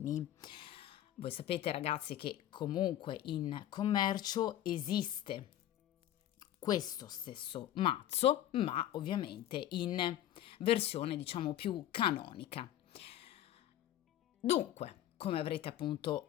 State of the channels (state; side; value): quieter; right; 12.2 dB